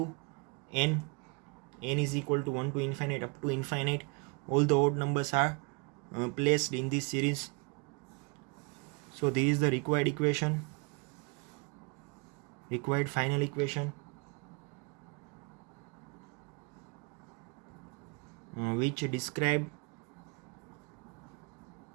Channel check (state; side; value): quieter; left; 32.1 dB